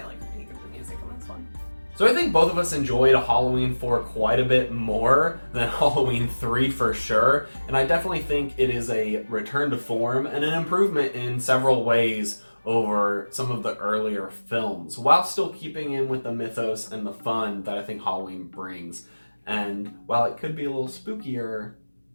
only critique of the music on this one. So I think both of us enjoyed Halloween 4 quite a bit more than Halloween 3 for sure, and I definitely think it is a return to form and an improvement in several ways over some of the earlier films, while still keeping in with the mythos and the fun that I think Halloween brings. And while it could be a little spookier,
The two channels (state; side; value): inverted; both; correlation -1.00